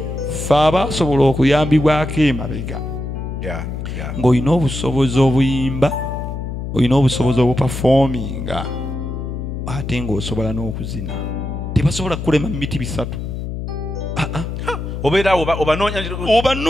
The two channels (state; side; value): noise; left; hum, 6 dB below the sound